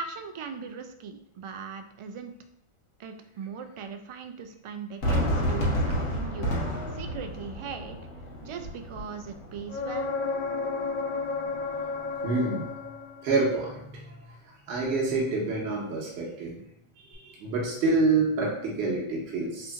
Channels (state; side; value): late; left; 1.4 ms